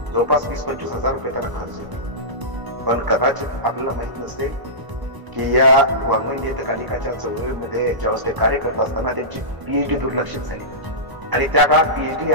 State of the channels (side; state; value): left; late; 1.0 ms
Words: जवळपास 20-25 हजार रुपये त्याला खर्च येतो. पण कदाचित आपल्याला माहित नसेल की या वाङ्मय नियतकालिकाच्या चळवळीमध्ये ज्यावेळेस ते कार्य करत असताना त्यांची पीएचडी दुर्लक्षित झाली आणि त्या काळात पीएचडी